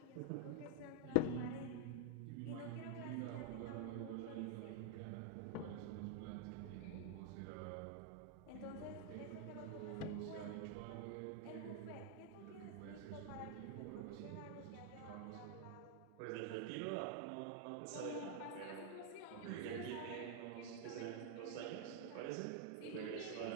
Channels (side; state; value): both; different; correlation 0.00